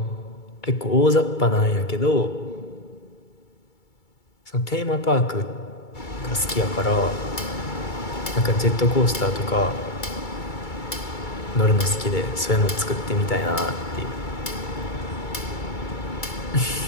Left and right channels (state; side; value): late; right; 2.3 ms